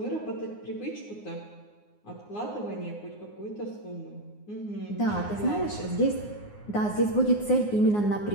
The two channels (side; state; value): right; late; 9.6 ms